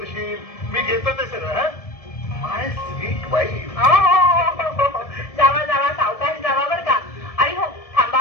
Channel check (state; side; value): late; right; 1.7 ms